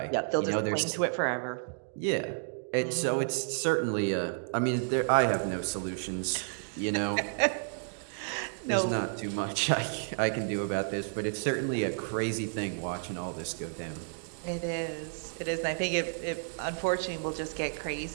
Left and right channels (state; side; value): silent; left; digital silence